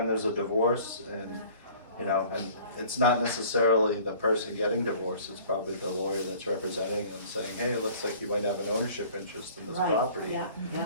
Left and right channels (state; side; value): inverted; both; correlation -0.50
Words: there's a divorce and, you know, and it's not necessarily the person getting divorced, it's probably the lawyer that's representing them saying, hey, it looks like you might have an ownership interest in this Right, property. yeah, yeah,